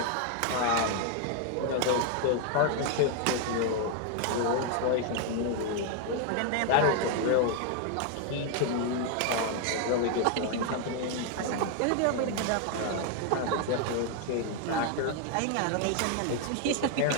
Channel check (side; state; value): both; different; correlation 0.00